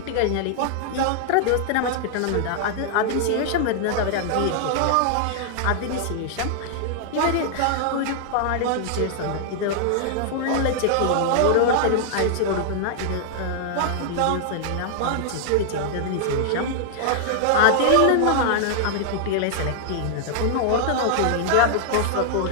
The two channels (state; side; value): different; both; correlation -0.01